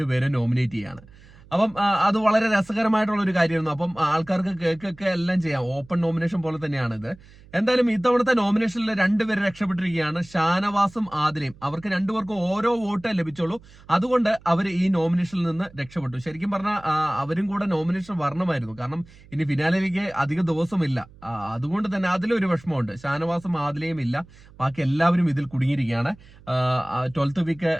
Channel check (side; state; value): right; noise; hum, 23 dB below the sound